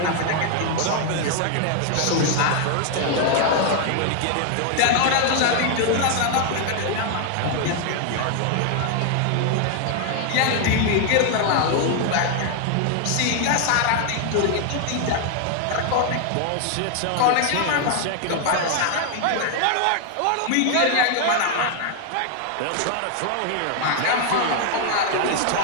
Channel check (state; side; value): different; both; correlation 0.00